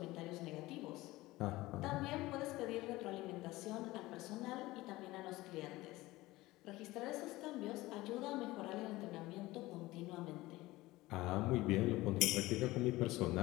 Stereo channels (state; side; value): quieter; right; 18.9 dB